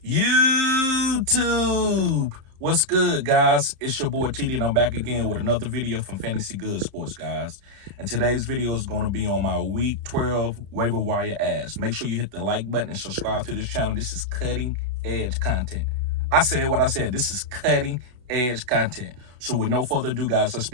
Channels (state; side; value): late; left; 32 ms